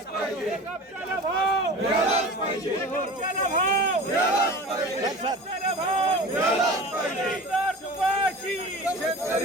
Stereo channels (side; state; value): both; normal; correlation 0.36